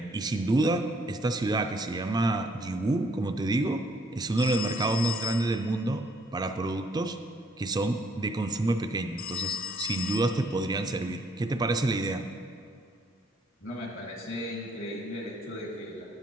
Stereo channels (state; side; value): normal; both; correlation 0.66